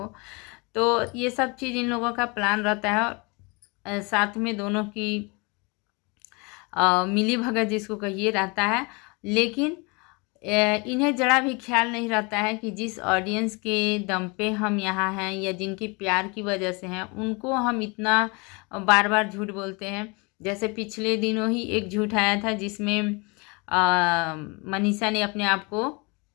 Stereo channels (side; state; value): right; quieter; 29.1 dB